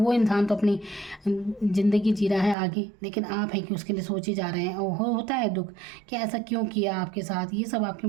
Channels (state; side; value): drops out; left; at 2.6 s